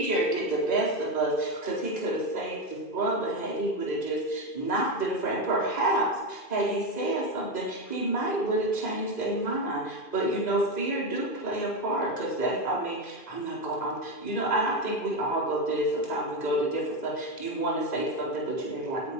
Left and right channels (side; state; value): right; late; 2.5 ms